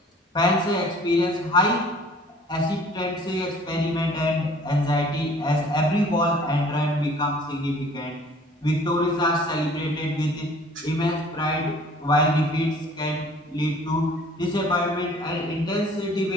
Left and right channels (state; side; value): normal; both; correlation 0.52